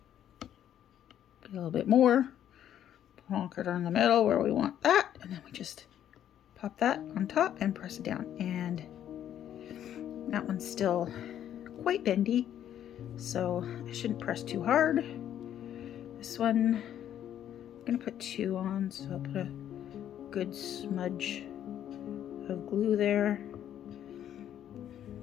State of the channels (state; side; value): quieter; right; 10.6 dB